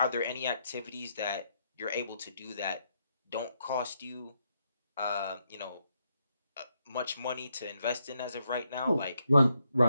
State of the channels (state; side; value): inverted; both; correlation -0.79